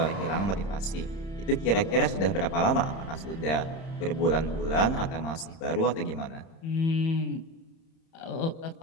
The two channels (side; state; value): right; late; 31 ms